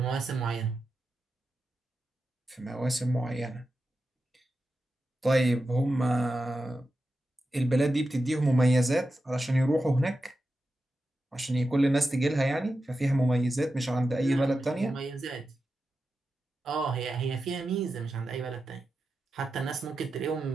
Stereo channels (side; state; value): both; normal; correlation 0.90